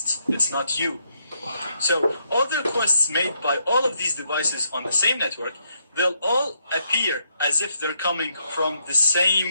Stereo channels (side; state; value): both; inverted; correlation -0.76